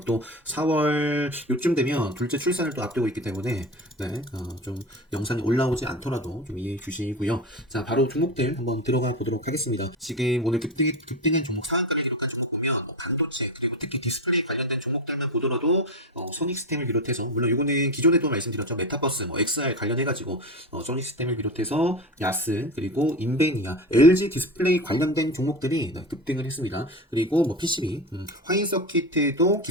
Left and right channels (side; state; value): both; normal; correlation 0.23